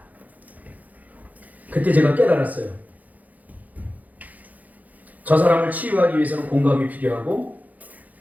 그때 제가 깨달았어요. 저 사람을 치유하기 위해서는 공감이 필요하고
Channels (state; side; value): late; left; 0.079 ms